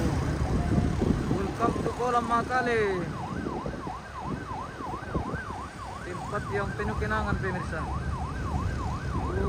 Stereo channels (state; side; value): identical; both; correlation 1.00